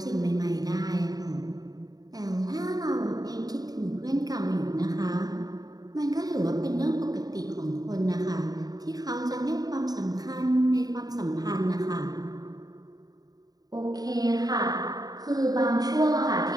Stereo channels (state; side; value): late; left; 0.18 ms